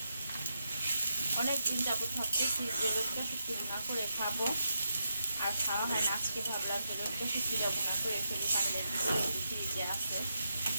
অনেক দিন যাবত ভাবতেছি যে লটকা শুটকি ভুনা করে খাবো, আর খাওয়া হয় না। আজকে ভাবলাম যে লটকা শুটকিটা ভুনা করে ফেলি। কাঁঠালের ফ্রিজে আছে,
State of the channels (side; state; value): both; inverted; correlation -0.84